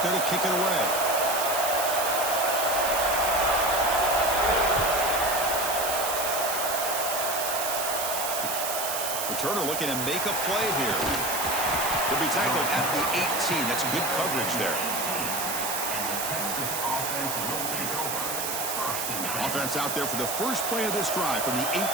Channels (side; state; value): right; noise; hiss, 3 dB below the sound